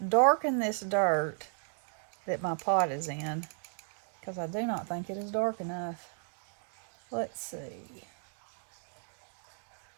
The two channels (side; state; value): left; silent; 55 dB below the other